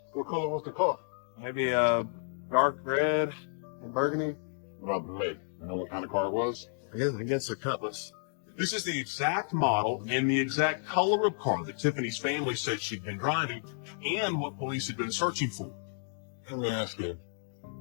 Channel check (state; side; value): silent; right; digital silence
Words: What color was the car? Maybe dark red and burgundy. What about the make? You know what kind of car it was? I guess a Cutlass. This is the exact model and the exact color of car that Tiffany's family said she'd been driving and what police had been searching for. Let me ask you.